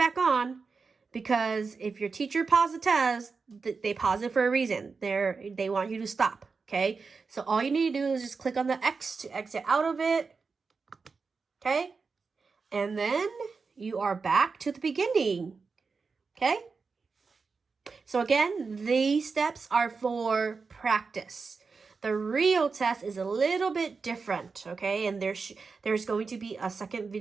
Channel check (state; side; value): quieter; left; 4.8 dB